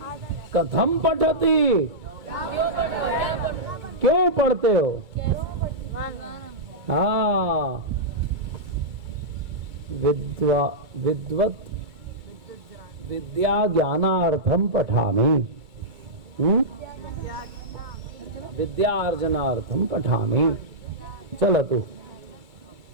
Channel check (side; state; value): left; late; 2.3 ms